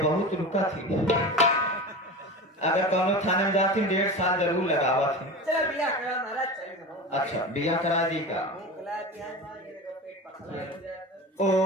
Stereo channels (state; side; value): normal; both; correlation 0.29